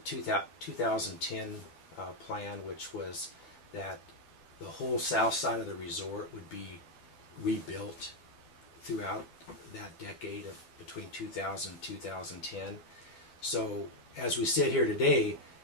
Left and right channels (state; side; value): late; right; 12 ms